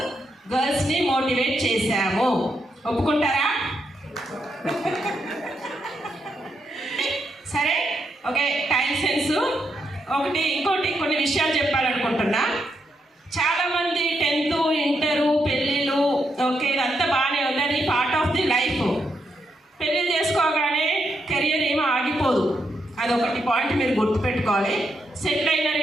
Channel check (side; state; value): both; normal; correlation 0.81